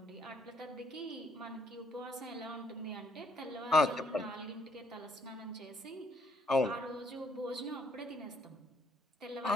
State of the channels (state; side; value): normal; both; correlation 0.67